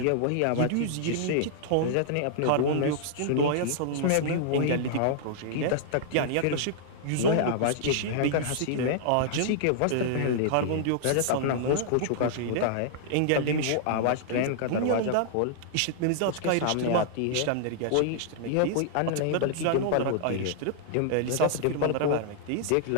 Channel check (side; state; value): both; different; correlation -0.01